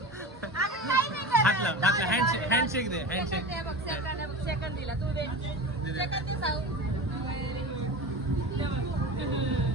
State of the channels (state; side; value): normal; both; correlation 0.29